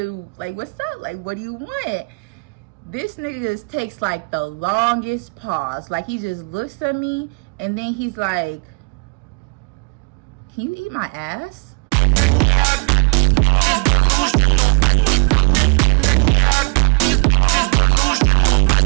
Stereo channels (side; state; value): left; quieter; 35.0 dB